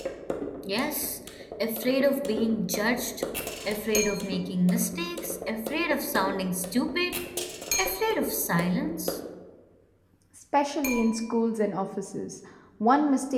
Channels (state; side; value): identical; both; correlation 1.00